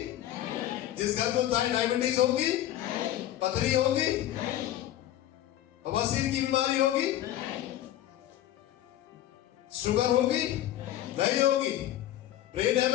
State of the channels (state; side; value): quieter; right; 13.0 dB